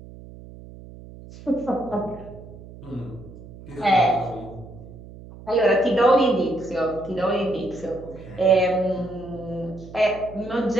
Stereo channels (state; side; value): noise; right; hum, 17 dB below the sound